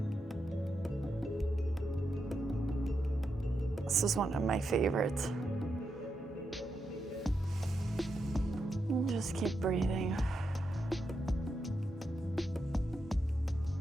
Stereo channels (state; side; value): normal; both; correlation 0.85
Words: This is one of my favorites. Just keep breathing.